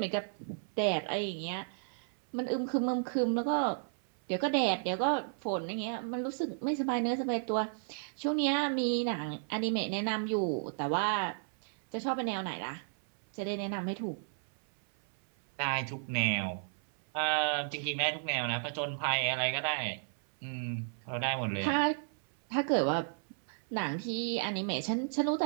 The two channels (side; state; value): left; silent; 55 dB below the other